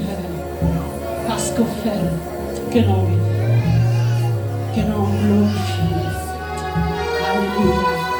parce qu'on fait. Que l'on vive, que l'on glorifie. Alléluia.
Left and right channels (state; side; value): identical; both; correlation 1.00